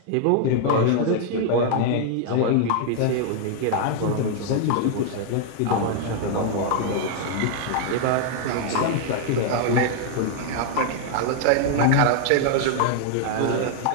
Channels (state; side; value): different; both; correlation 0.00